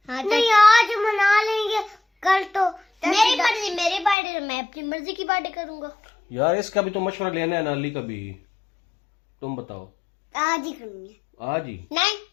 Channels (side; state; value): right; drops out; at 4.2 s